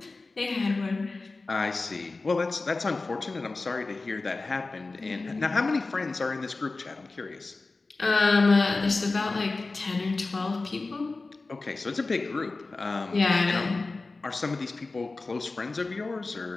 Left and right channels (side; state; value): right; quieter; 3.5 dB